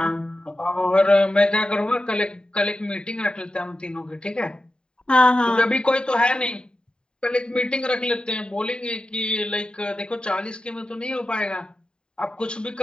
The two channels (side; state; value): right; late; 0.049 ms